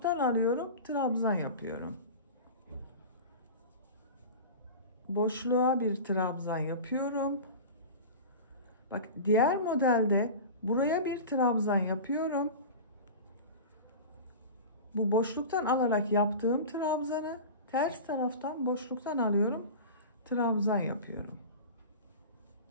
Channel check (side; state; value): both; inverted; correlation -0.32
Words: alıyorum. Trabzan yapıyorum. Boşluğa bir trabzan yapıyorum. Bak diğer modelde buraya bir trabzan yapıyorum. Bu boşluktan alarak yaptığım trabzanı ters taraftan boşluktan alıyorum. Trabzan yapıyorum.